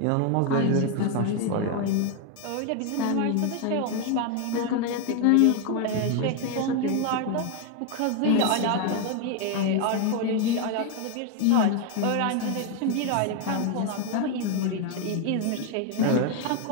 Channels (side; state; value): both; different; correlation 0.01